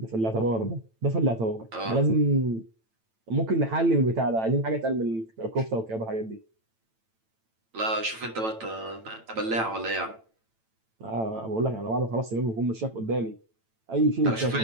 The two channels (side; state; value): left; late; 9.0 ms